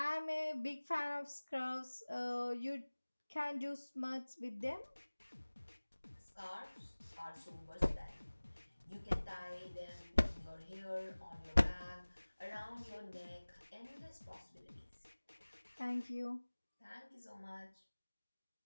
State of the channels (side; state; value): both; inverted; correlation -1.00